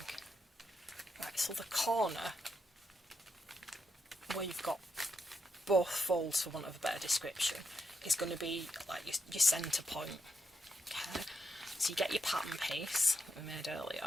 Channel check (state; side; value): normal; both; correlation 0.82